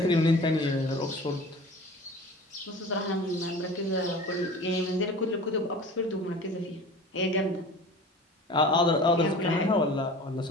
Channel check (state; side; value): normal; both; correlation 0.39